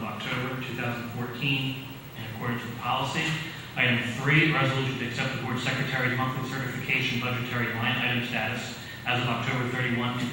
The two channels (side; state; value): both; identical; correlation 1.00